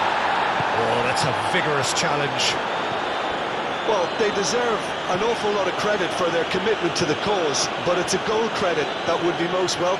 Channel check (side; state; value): both; identical; correlation 1.00